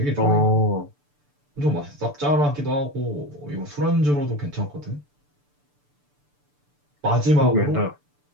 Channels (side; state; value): left; late; 6.8 ms